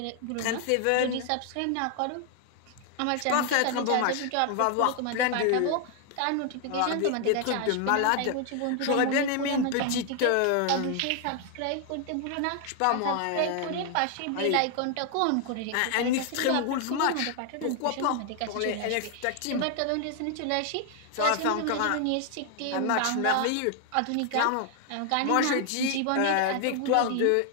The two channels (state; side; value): different; both; correlation 0.00